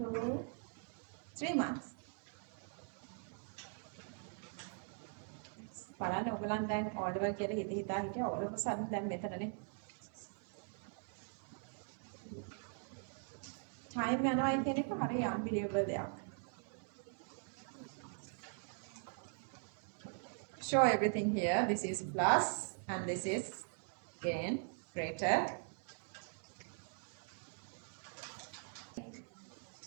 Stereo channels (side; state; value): left; silent; 50 dB below the other